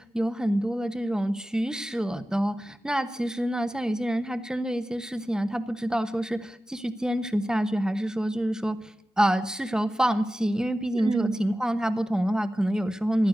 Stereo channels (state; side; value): normal; both; correlation 0.94